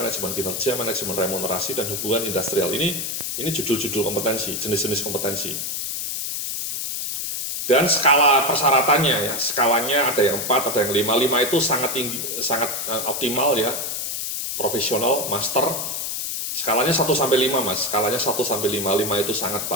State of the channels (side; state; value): left; noise; hiss, 3 dB below the sound